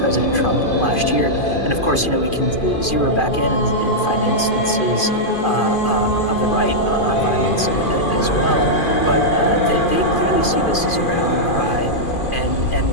Trump last year. And of course, we can zero back in and find instances of the right on violence as well. But they clearly see this as a rallying cry and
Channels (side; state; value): right; late; 2.5 ms